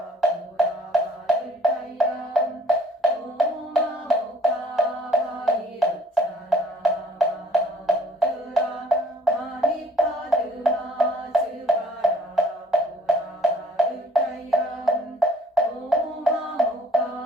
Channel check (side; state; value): both; normal; correlation 0.56